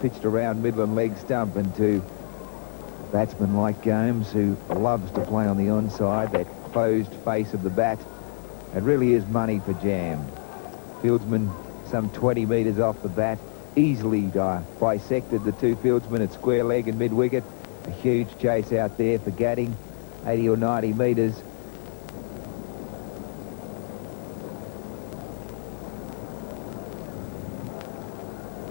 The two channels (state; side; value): silent; right; 60 dB below the other